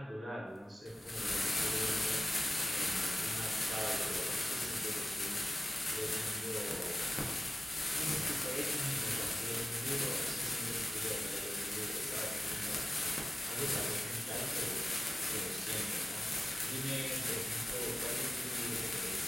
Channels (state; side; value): normal; both; correlation 0.95